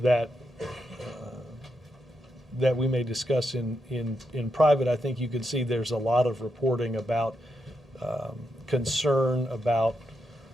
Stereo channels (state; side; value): normal; both; correlation 0.83